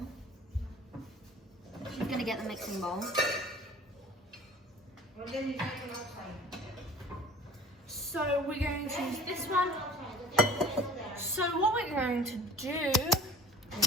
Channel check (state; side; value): normal; both; correlation 0.46